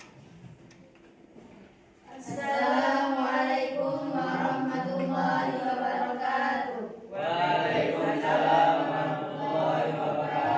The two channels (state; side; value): identical; both; correlation 1.00